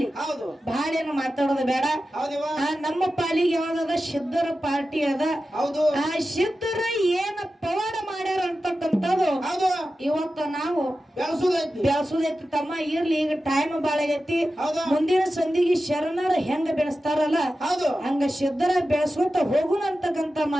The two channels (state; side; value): normal; both; correlation 0.93